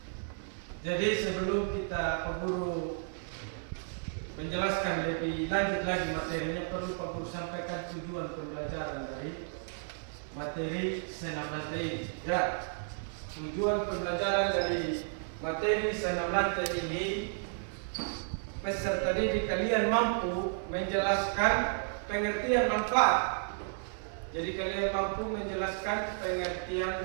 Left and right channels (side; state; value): left; silent; 56 dB below the other